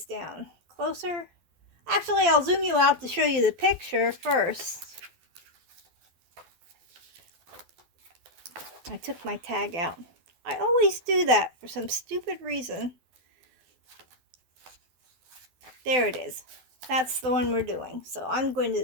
down closer. Actually, I'll zoom you out to show you the picture first. I took my tag out. I always do that for some stupid reason. There it is. That's the one we're doing. So I'm going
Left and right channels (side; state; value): left; late; 12 ms